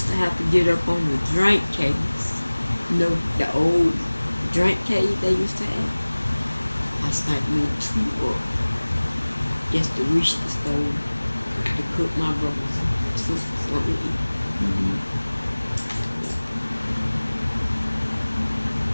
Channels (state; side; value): inverted; both; correlation -1.00